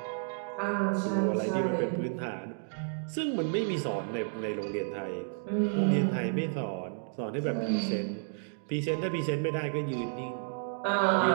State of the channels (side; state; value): left; silent; digital silence